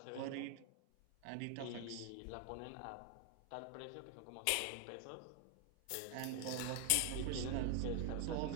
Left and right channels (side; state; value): both; different; correlation 0.00